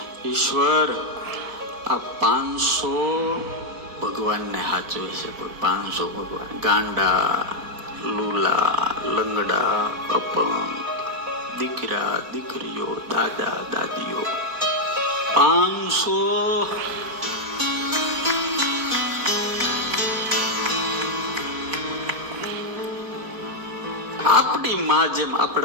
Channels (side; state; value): left; late; 4.1 ms